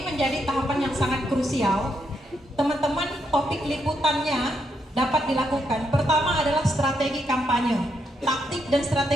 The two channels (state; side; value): normal; both; correlation 0.79